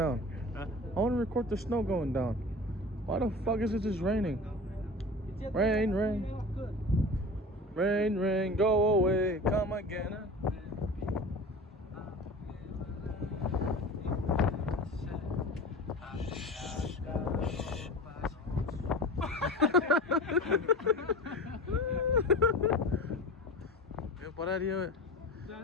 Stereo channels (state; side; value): normal; both; correlation 0.34